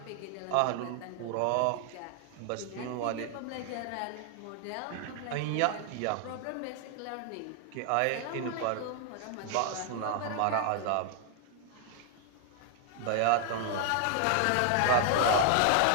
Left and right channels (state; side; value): different; both; correlation 0.00